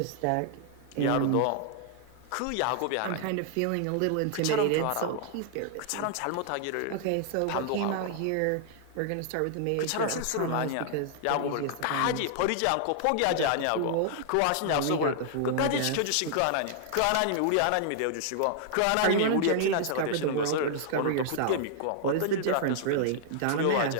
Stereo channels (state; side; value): different; both; correlation -0.01